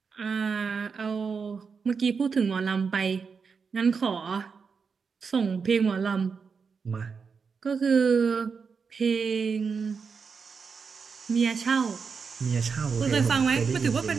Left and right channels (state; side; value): quieter; left; 5.5 dB